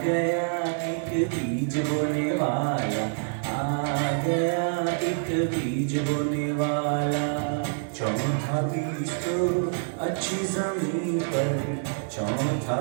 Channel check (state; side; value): silent; left; digital silence